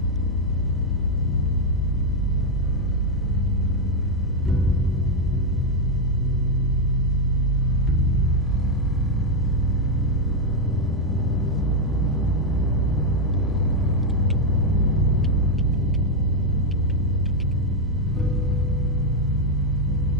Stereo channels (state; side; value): normal; both; correlation 0.01